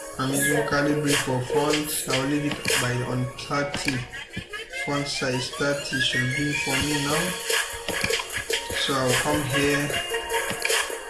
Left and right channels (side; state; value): both; identical; correlation 1.00